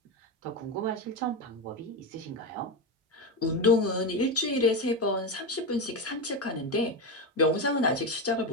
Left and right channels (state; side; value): normal; both; correlation 0.15